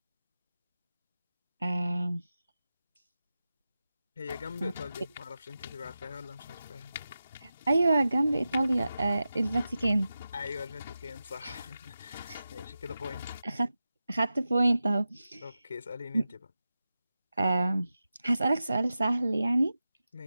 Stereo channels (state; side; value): inverted; both; correlation -0.92